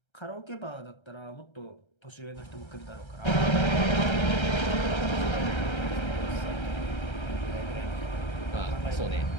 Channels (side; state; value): right; late; 1.3 ms